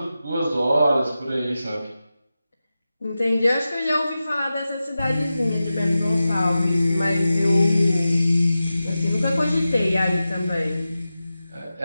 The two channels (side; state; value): both; inverted; correlation -0.93